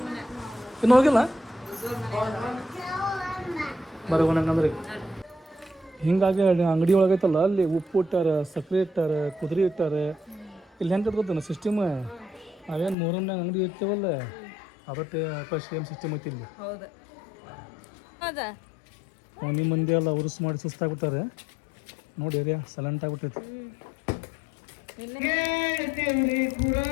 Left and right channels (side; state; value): right; drops out; at 13.0 s